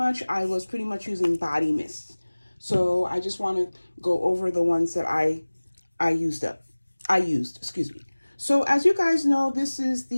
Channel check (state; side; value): inverted; both; correlation -1.00